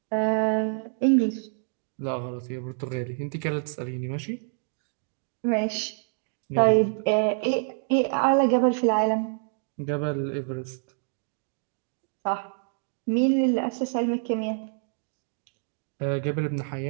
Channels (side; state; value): left; silent; digital silence